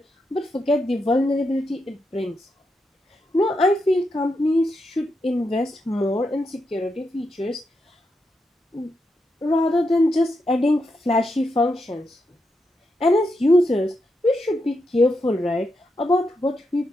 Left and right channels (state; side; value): normal; both; correlation 0.84